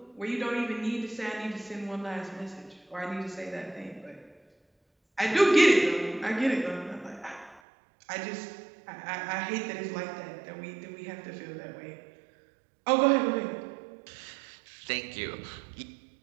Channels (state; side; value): drops out; left; at 7.6 s